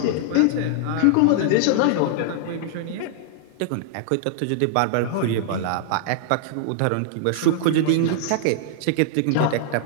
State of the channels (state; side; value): different; both; correlation -0.01